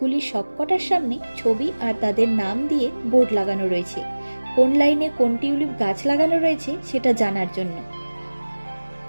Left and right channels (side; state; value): both; inverted; correlation -1.00